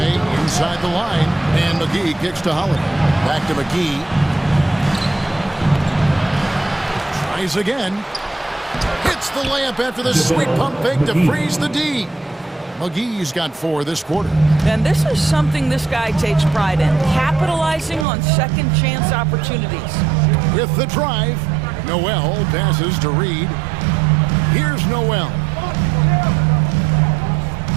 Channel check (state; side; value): drops out; left; at 18.1 s